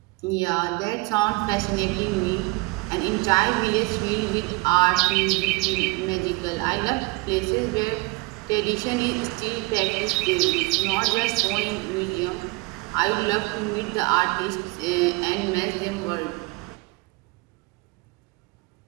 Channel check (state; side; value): quieter; left; 25.6 dB